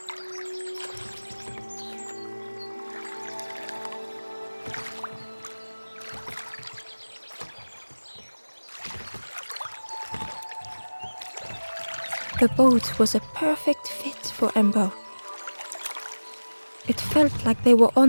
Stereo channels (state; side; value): inverted; both; correlation -1.00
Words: The boat was a perfect fit for Ember. It felt like they were